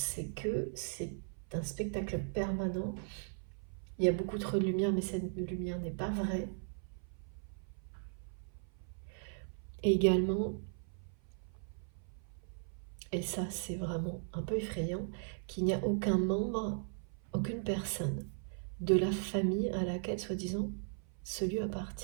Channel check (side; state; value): left; silent; 53 dB below the other